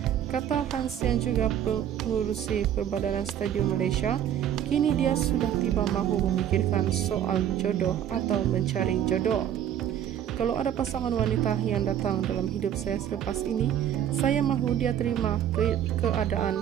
kata Hans yang juga pengurusi Perbadanan Stadium Malaysia, kini dia sudah tiba mahu memikirkan soal jodoh atau mencari jodoh. Kalau ada pasangan wanita yang datang dalam hidup saya selepas ini, saya mahu dia terima keadaan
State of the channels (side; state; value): left; quieter; 10.1 dB